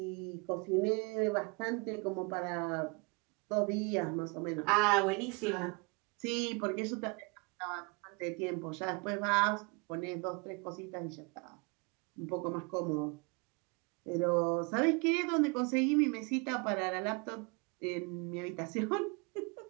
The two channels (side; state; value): left; quieter; 30.8 dB